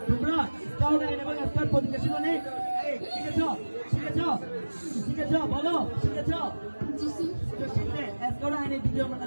তোমরা? স্কাউট আইন এবং স্কাউট পজিশন নেই। এই শিখেছো? বলো শিখেছো? জি স্যার। তো শিখলে স্কাউট আইনের দ্বিতীয়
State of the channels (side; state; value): both; inverted; correlation -1.00